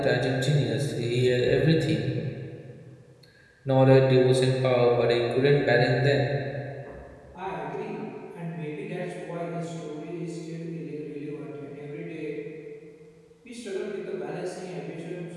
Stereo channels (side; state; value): both; identical; correlation 1.00